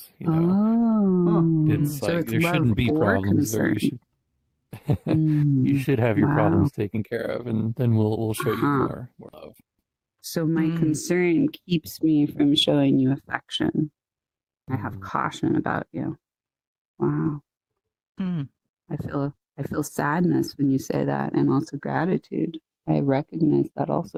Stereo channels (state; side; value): identical; both; correlation 1.00